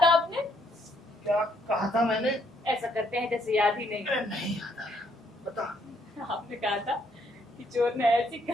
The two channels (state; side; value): normal; both; correlation 0.70